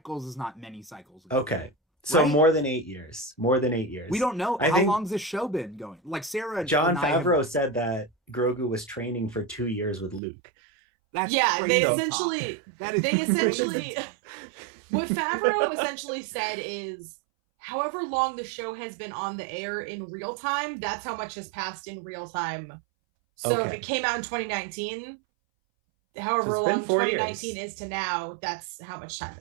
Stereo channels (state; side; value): drops out; left; at 10.2 s